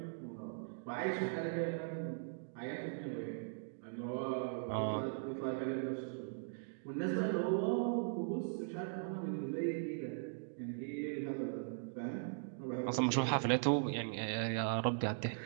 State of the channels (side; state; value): left; silent; digital silence